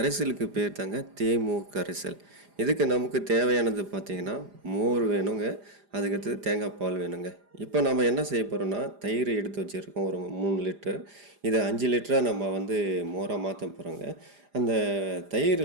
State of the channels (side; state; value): left; late; 4.9 ms